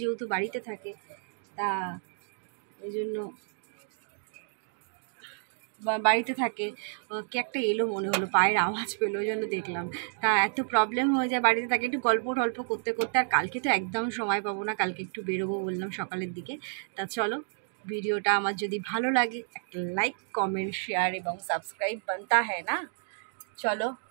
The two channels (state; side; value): silent; left; digital silence